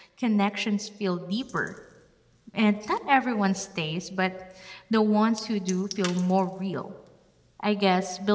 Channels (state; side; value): identical; both; correlation 1.00